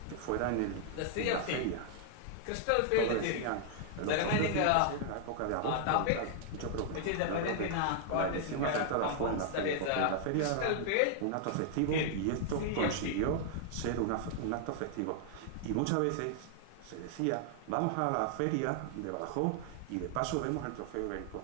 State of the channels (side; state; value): both; different; correlation 0.00